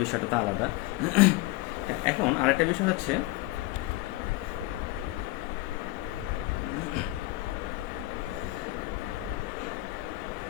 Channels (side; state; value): right; quieter; 19.0 dB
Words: বিষয়টা তো আলাদা। এখন আরেকটা বিষয় হচ্ছে